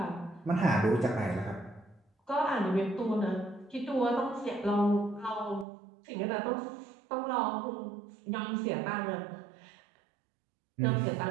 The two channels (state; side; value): drops out; left; at 5.7 s